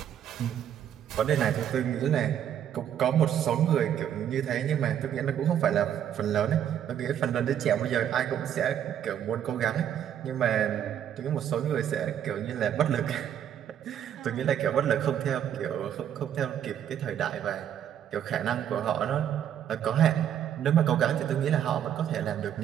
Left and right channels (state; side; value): quieter; left; 9.7 dB